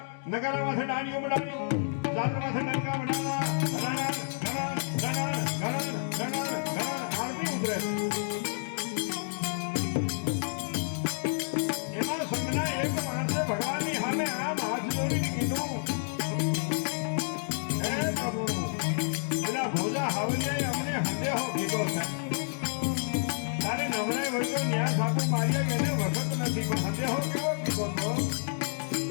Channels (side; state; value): right; silent; digital silence